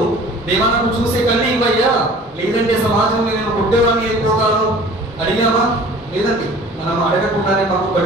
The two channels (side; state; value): both; normal; correlation 0.46